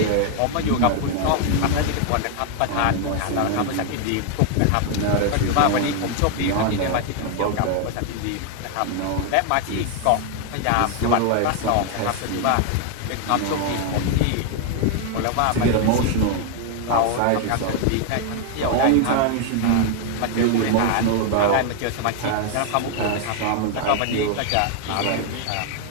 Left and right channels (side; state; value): both; different; correlation 0.00